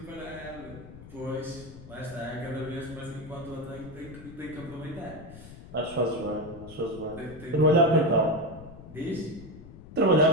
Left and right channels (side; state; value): left; noise; rumble, 16 dB below the sound